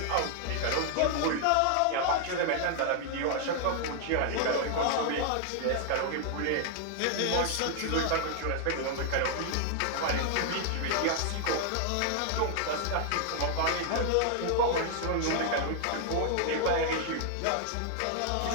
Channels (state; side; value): different; both; correlation 0.00